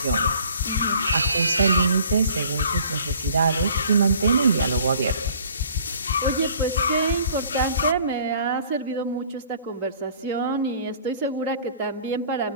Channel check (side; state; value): both; inverted; correlation -0.53